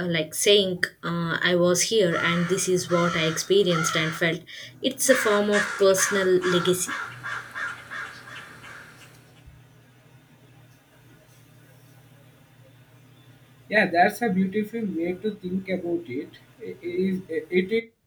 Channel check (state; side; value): identical; both; correlation 1.00